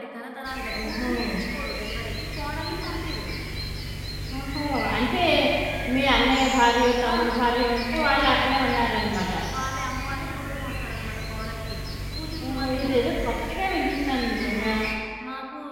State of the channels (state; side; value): identical; both; correlation 1.00